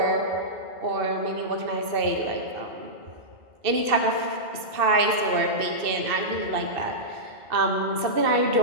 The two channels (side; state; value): left; late; 2.6 ms